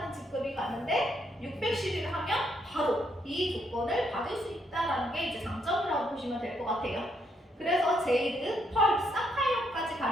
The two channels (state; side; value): normal; both; correlation 0.75